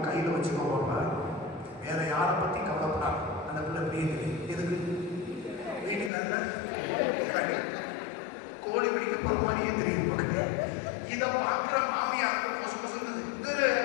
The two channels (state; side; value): drops out; right; at 6.1 s